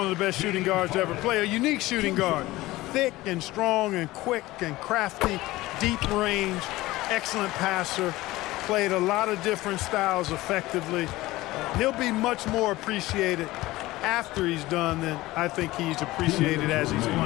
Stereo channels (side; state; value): right; quieter; 18.3 dB